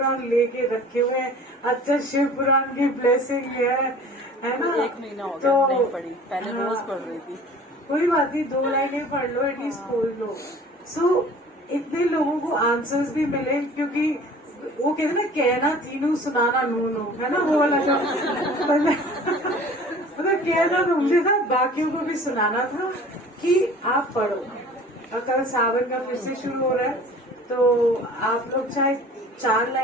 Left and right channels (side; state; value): both; normal; correlation 0.45